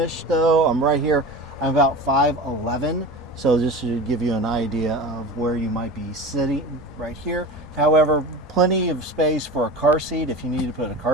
though. I'm right here. I'm about 5'11", so this should give you an idea of where you might be sitting right here. However, plenty of space for a car seat if you need to put a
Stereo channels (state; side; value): normal; both; correlation 0.32